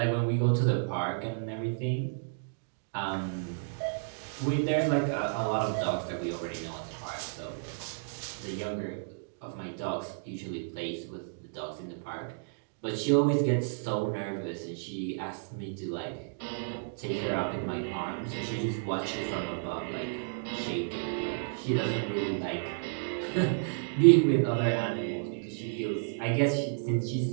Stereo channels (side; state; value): left; silent; digital silence